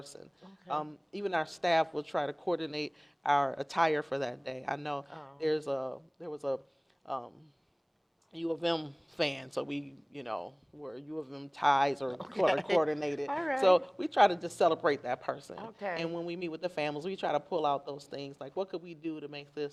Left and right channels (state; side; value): identical; both; correlation 1.00